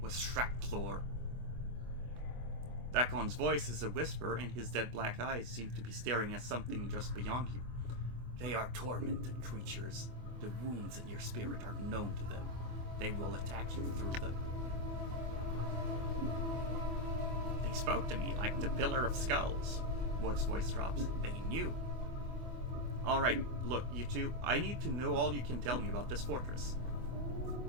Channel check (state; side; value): late; left; 24 ms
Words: Shracklor. Dakon's voice is a whisper, and his dead black eyes seem to be staring at something just beyond you. They are tormented creatures. The wounds in your spirit are known to them. They will attack you through them. They spoke to me like the Pillar of Skulls. Mort's voice drops. They knew. Alright, look, you two, I need to know all you can tell me about this fortress.